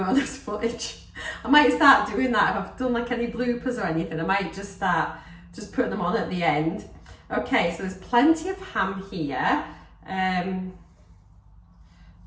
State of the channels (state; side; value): identical; both; correlation 1.00